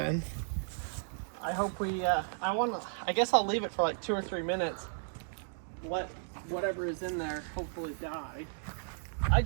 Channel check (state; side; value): silent; left; digital silence